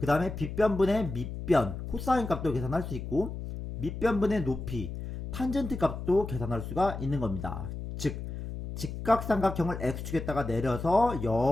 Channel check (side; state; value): left; noise; hum, 7 dB below the sound